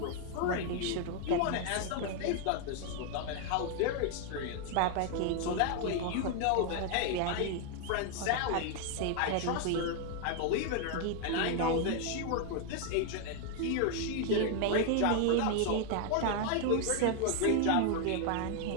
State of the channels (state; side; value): different; both; correlation 0.00